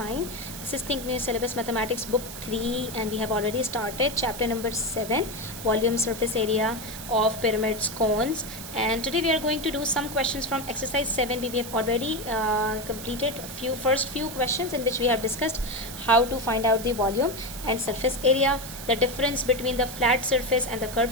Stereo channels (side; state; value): right; noise; hiss, 11 dB below the sound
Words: This is Think New Syllabus Mathematics Book 3 and we have already started chapter number 7, volume, surface area of pyramids, cones, and today we are going to do some questions from exercise 7. We have already completed first few questions in which we have discussed how to find out the volume and surface area, the difference between the flat surface and the